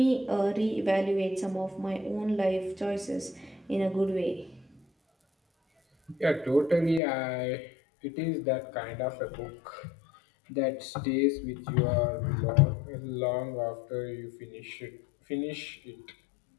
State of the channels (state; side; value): drops out; right; at 7.0 s